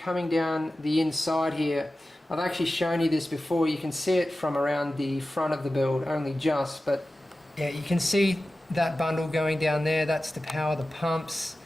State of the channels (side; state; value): both; normal; correlation 0.95